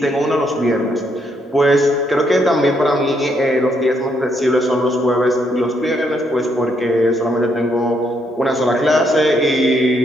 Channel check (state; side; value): normal; both; correlation 0.74